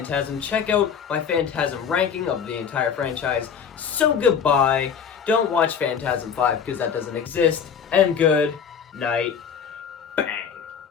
Check out my Phantasm ranking of the entire franchise. So goodbye. Don't watch Phantasm 5 because that doesn't exist. And good night.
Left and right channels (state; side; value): quieter; right; 7.2 dB